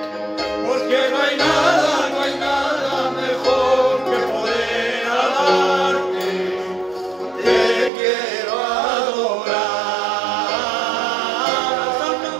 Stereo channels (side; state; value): left; drops out; at 7.9 s